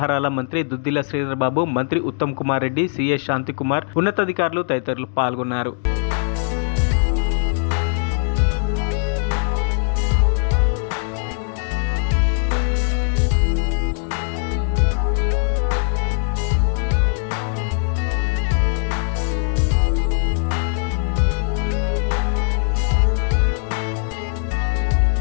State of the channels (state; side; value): silent; right; digital silence